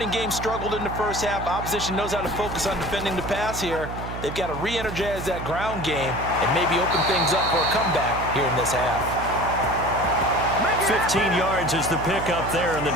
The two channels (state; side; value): noise; right; hum, 8 dB below the sound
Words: game struggled in the first half. Opposition knows how to focus on defending the pass here. They've got to re-energize that ground game and maybe open things up for a comeback here in this half. 15 yards is the pickup there, and the